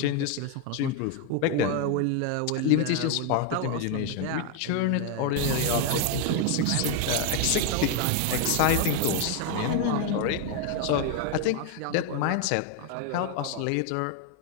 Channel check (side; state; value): both; different; correlation 0.01